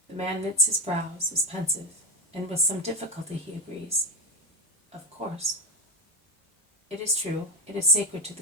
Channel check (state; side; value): normal; both; correlation 0.13